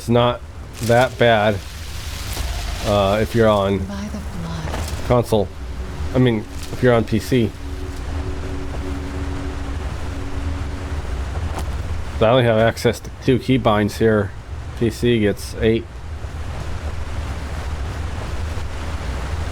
not that bad if you're on console. I mean, if you're on PC. So I only have access to 2 keybinds here. PC gets 8.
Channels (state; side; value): identical; both; correlation 1.00